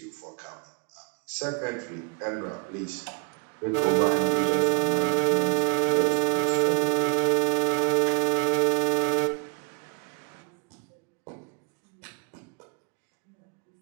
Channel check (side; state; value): left; quieter; 33.7 dB